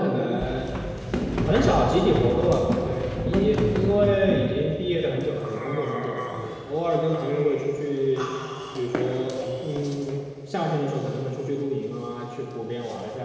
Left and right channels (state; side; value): identical; both; correlation 1.00